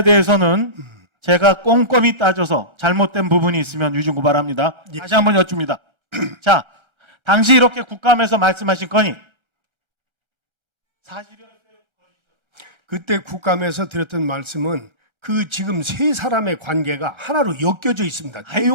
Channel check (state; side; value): late; left; 1.3 ms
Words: 대해서는 제가 꼼꼼히 따져서 잘못된 부분이 있으면 위증 고발합니다. 예. 다시 한번 여쭙니다. 자, 당시 이렇게 국감에서 말씀하신 건이 사실이요? 그때 국감에서 드렸던 말씀은 그 지금 세 사람의 관계가 하나로 엮여져 있습니다.